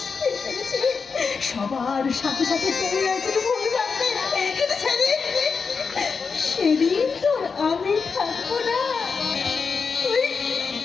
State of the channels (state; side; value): quieter; right; 5.3 dB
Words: পেরেছি। সবার সাথে সাথে তুমি একটু ভুল রাখবে, কিন্তু সেদিন তোর আমি থাকবো না।